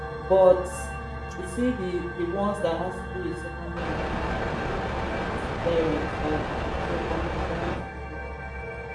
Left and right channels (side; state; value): both; identical; correlation 1.00